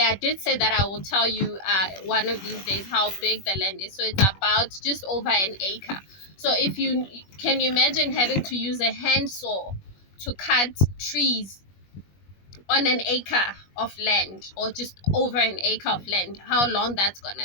did say that I will tell you one of these days how big the land is. So it's about just over an acre. So if you can, you imagine having to use a handsaw to cut trees on an acre of land, or just over an acre of land, how long that's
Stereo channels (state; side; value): late; right; 21 ms